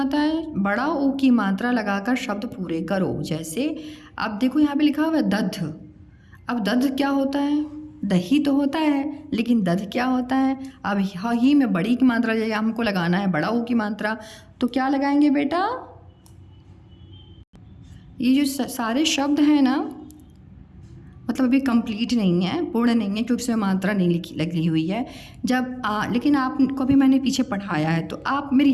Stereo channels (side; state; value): both; identical; correlation 1.00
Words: है, बड़ा ओ की मात्रा लगाकर शब्द पूरे करो। जैसे अब देखो यहाँ पे लिखा हुआ है दध, अब दध क्या होता है, दही तो होता है, लेकिन दध क्या होता है। अब ही में बड़ी की मात्रा जैसे हमको लगाना है, बड़ा ओ की मात्रा, तो क्या लगाएंगे बेटा, ये जो सारे शब्द हैं ना, मतलब अभी कंप्लीट नहीं है, पूर्ण नहीं है, क्योंकि उसमें मात्रा नहीं लगी हुई है। जब लेकिन आपको भी मैंने पीछे पढ़ाया है, तो आप मेरी